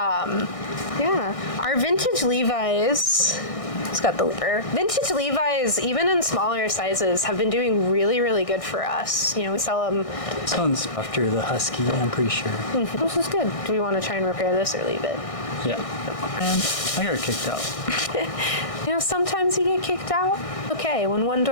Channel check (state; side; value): late; right; 1.6 ms